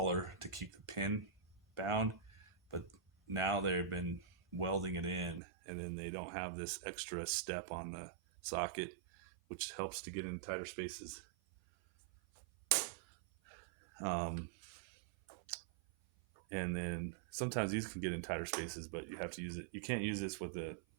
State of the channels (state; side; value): drops out; left; at 5.4 s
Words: to keep the pin bound, but now they've been welding it in, and then they don't have this extra step on the socket, which helps to get in tighter spaces. And then sometimes these can get in tighter spaces, but you have to use it. You can't use this with the